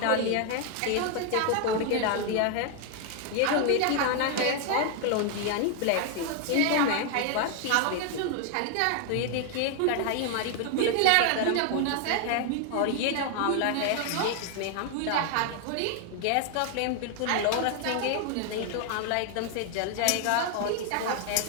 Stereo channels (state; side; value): different; both; correlation 0.00